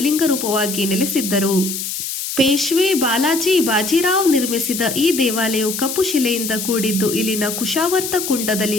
ರೂಪವಾಗಿ ನೆಲೆಸಿದ್ದರು. ಪೇಶ್ವೆ ಬಾಲಾಜಿ ಬಾಜಿರಾವ್ ನಿರ್ಮಿಸಿದ ಈ ದೇವಾಲಯವು ಕಪ್ಪು ಶಿಲೆಯಿಂದ ಕೂಡಿದ್ದು, ಇಲ್ಲಿನ ಕುಶಾವರ್ತ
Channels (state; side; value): noise; left; hiss, 5 dB below the sound